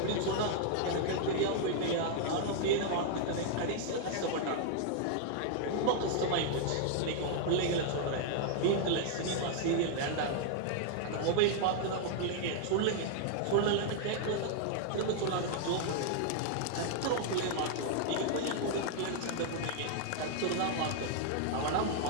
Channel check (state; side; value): different; both; correlation 0.00